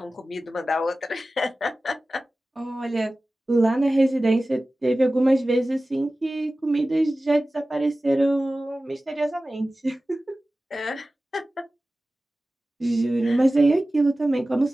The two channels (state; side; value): normal; both; correlation 0.96